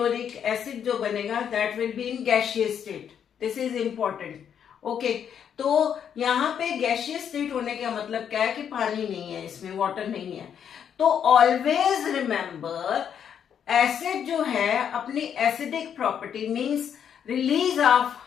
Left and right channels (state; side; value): quieter; right; 8.4 dB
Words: acid जो बनेगा that will be in gaseous state. This is important. Okay, तो यहाँ पे गैसियस स्टेट होने का मतलब क्या है कि पानी नहीं है इसमें, वाटर नहीं है. तो ऑलवेज रिमेंबर एसिड जो है अपनी acidic property means release of